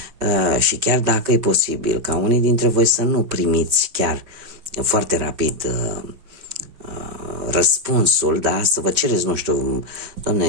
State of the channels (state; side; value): late; left; 5.3 ms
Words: și chiar dacă e posibil ca unii dintre voi să nu primiți chiar foarte rapid răspunsul, da, să vă cereți, nu știu,